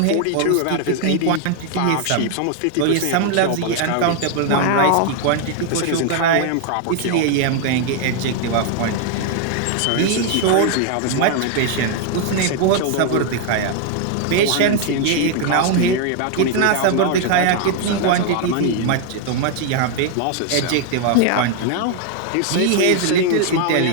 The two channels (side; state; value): both; different; correlation 0.00